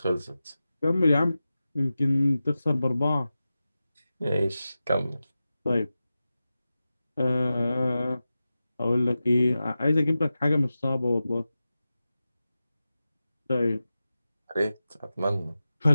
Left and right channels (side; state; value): both; inverted; correlation -0.94